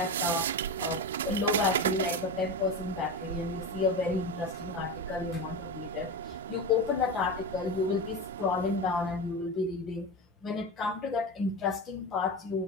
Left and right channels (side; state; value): both; normal; correlation 0.21